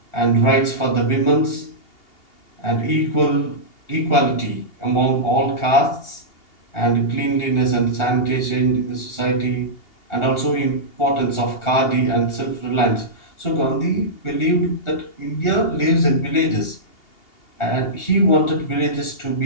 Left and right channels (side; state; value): right; late; 2.8 ms